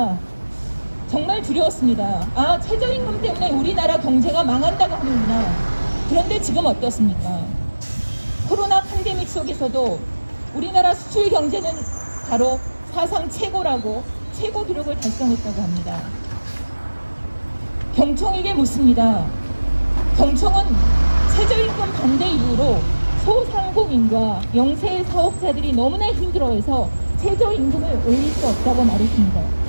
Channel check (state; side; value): inverted; both; correlation -1.00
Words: 정말 두려웠습니다. 아, 최저임금 때문에 우리나라 경제가 망한다고 하는구나. 그런데 지금 어떻습니까? 코로나 팬데믹 속에서도 우리나라 수출 경제는 바로 사상 최고라고 최고 기록을 달성했다고 합니다. 경총에게 묻습니다. 경총은 최저임금 반대 이후로 소상공인과 영세 사업자들이 너무나 힘들어해서 최저임금을 올릴 수 없다고